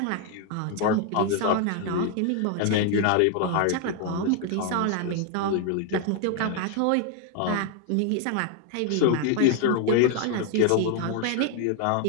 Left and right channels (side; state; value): both; different; correlation 0.00